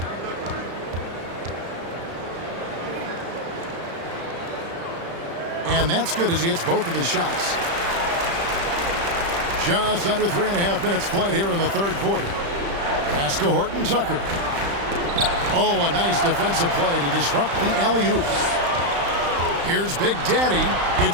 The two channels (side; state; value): left; late; 35 ms